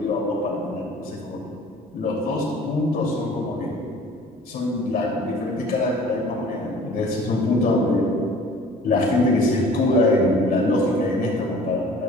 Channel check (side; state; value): both; normal; correlation 0.48